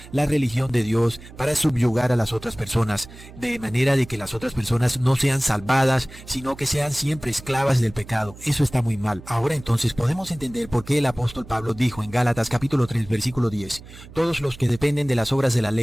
la religión de Dios para subyugar a las otras personas, de manera de que las otras personas no sean salvadas, sino que sean siempre esclavas del pecado. Eso está muy mal. Ahora entonces podemos entender por qué el apóstol Pablo dijo en Gálatas capítulo 3 versículo 10, todos los que dependen de las obras de la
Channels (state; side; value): noise; right; hum, 18 dB below the sound